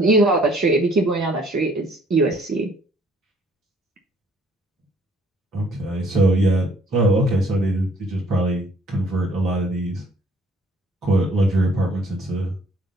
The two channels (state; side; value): normal; both; correlation 0.61